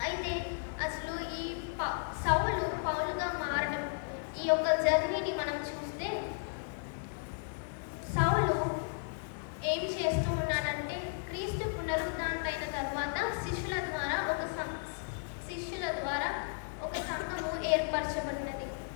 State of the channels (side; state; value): right; silent; digital silence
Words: అయితే అసలు ఈ సౌలు పౌలుగా మారడం, ఈ యొక్క జర్నీని మనం చూస్తే సౌలు ఏం చేస్తూ ఉన్నాడంటే, క్రీస్తు పునరుద్ధానుడైన తర్వాత శిష్యుల ద్వారా ఒక సంఘము ఏర్పరచబడినది.